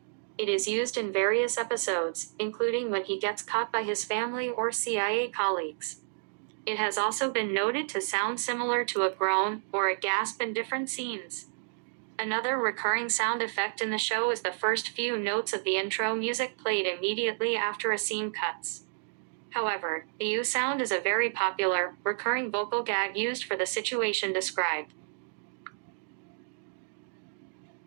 It is used in various episodes, including when he gets caught by his family or CIA colleagues. It has also been noted to sound similar to a groan or a gasp in different scenes. Another recurring sound effect in the show is the first few notes of the intro music played immediately after a scene cuts. However, the ooh sound is a very popular, recurring vocal gag used for the situation described.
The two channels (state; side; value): silent; left; digital silence